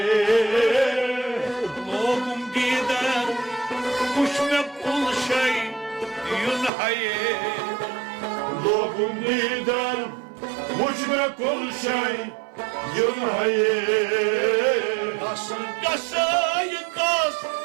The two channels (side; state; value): left; drops out; at 6.7 s